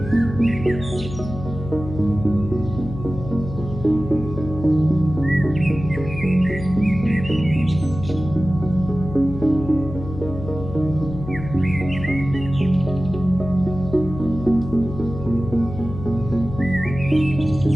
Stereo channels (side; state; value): left; noise; hum, 10 dB below the sound